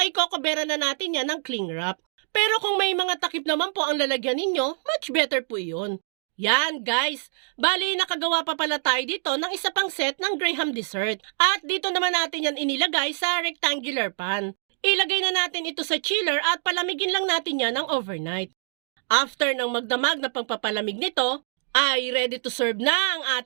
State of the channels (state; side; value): silent; left; digital silence